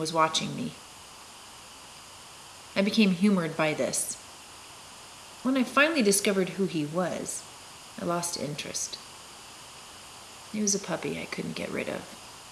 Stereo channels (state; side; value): identical; both; correlation 1.00